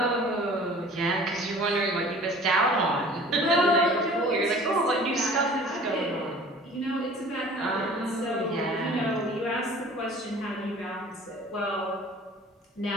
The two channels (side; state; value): both; normal; correlation 0.47